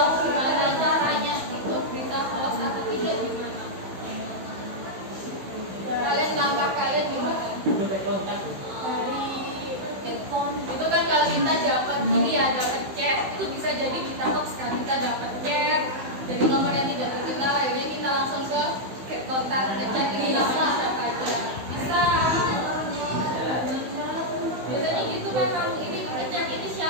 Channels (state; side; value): late; left; 16 ms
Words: gimana caranya itu berita hoax atau tidak gimana? Kalian langkah kalian gimana? Dari handphone itu kan kalau kita dapat ini ya dapat chat itu bisa jadi berita hoax kan, kita dapat chat dari nomor yang tidak dikenal akhirnya kita langsung ke kontak ngecek ini namanya siapa aja bisa. Biasanya gitu memang ini ngecek ini